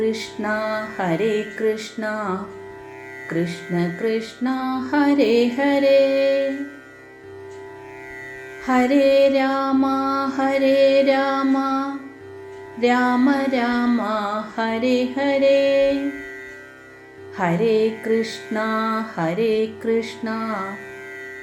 കൃഷ്ണ കൃഷ്ണ ഹരേ ഹരേ, ഹരേ രാമ രാമ രാമ ഹരേ ഹരേ, ഹരേ കൃഷ്ണ ഹരേ കൃഷ്ണ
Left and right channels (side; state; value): both; identical; correlation 1.00